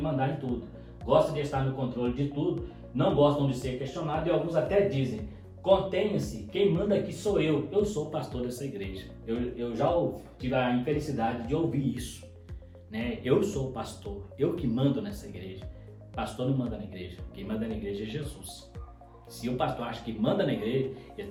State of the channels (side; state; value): both; identical; correlation 1.00